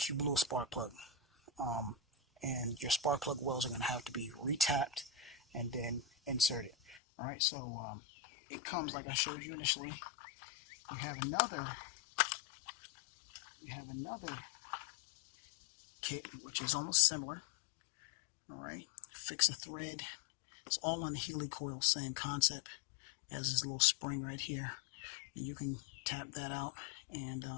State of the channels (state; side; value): drops out; right; at 7.0 s